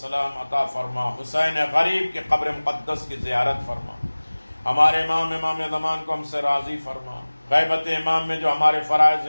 عطا فرما، حسین غریب کی قبر مقدس کی زیارت فرما، ہمارے امام زمان کو ہم سے راضی فرما، غیبت امام میں جو ہمارے فرائض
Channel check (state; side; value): inverted; both; correlation -1.00